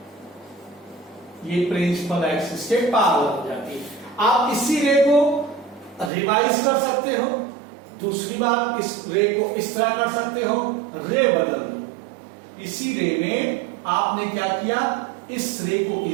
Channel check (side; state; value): left; drops out; at 6.1 s